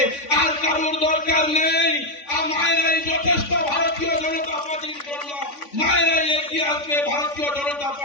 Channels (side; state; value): right; late; 3.5 ms